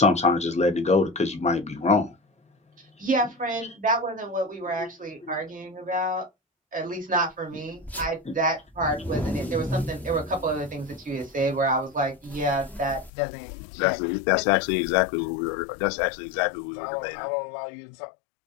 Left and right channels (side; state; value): right; drops out; at 13.1 s